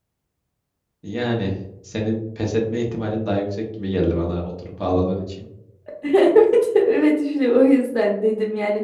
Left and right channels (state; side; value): identical; both; correlation 1.00